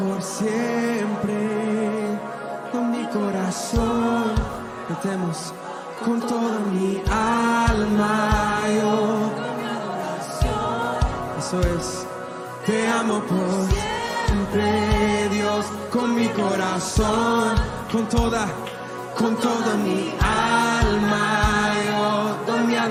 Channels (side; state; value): both; identical; correlation 1.00